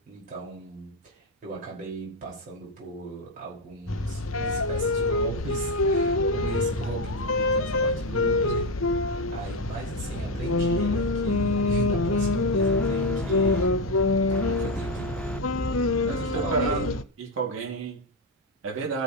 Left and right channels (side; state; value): both; normal; correlation 0.09